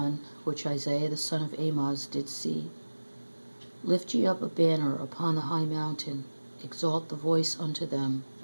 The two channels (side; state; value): both; inverted; correlation -1.00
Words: which Isaiah the son of Amoz did see. Lift ye up a banner upon the high mountain, exalt the voice unto them,